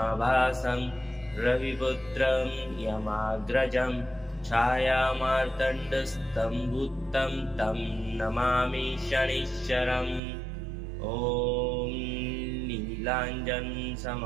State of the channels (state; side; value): drops out; left; at 10.2 s